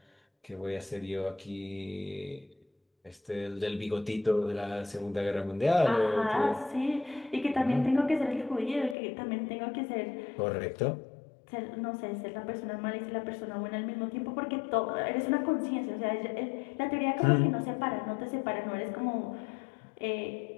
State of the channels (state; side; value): drops out; right; at 9.0 s